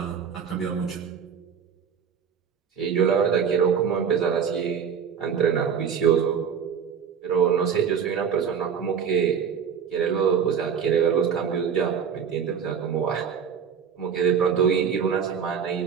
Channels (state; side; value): quieter; left; 7.3 dB